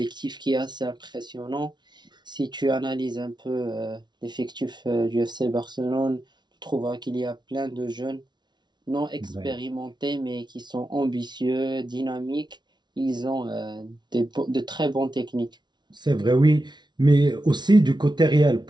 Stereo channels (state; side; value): late; left; 0.21 ms